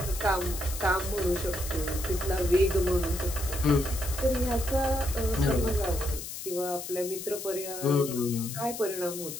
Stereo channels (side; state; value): left; noise; hiss, 8 dB below the sound